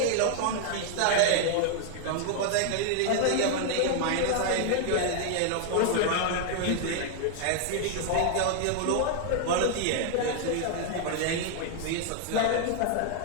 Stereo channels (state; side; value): different; both; correlation 0.00